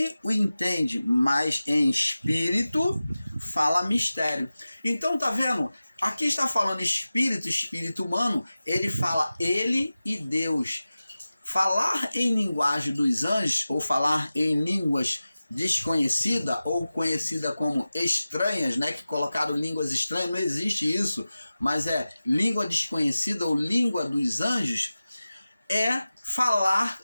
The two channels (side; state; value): both; inverted; correlation -0.96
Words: o entende, mas em espírito fala mistério. Então, tá vendo? Aqui está falando espírito humano, ele fala ele e Deus. Falar em linguagem dos anjos, ou falar em línguas desconhecida ou conhecida como estranhas, né, que colocaram línguas estranhas, não existe isso, mas é língua desconhecida ou língua dos anjos, é falar